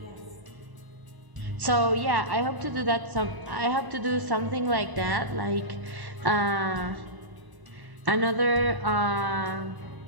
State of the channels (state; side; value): late; left; 1.0 ms